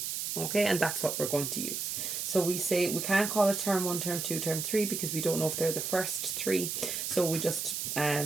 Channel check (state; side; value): noise; right; hiss, 3 dB below the sound